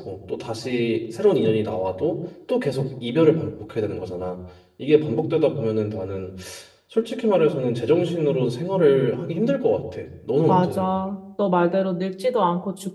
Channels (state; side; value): identical; both; correlation 1.00